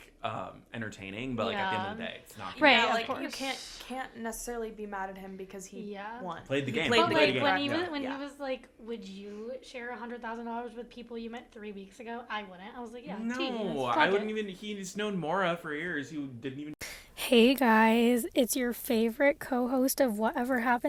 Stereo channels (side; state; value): both; identical; correlation 1.00